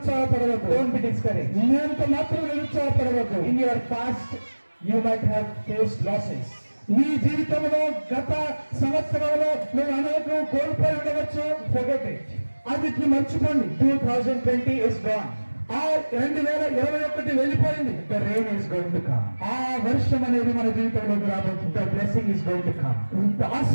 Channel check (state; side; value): inverted; both; correlation -1.00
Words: Don't be discouraged. ఎంత మాత్రం నిరుత్సాహపడవద్దు. In your past, you might have faced losses. నీ జీవితంలో గత సంవత్సరంలో నువ్వు అనేక కోల్పోయి ఉండవచ్చు. Forget it. అది మర్చిపోండి. 2020 is gone. ఆ 2021 వెళ్ళిపోయింది. The rain is going to come. ఆ వర్షం అనేది మన జీవితంలోకి రాబోతుంది. The blessing is going to come.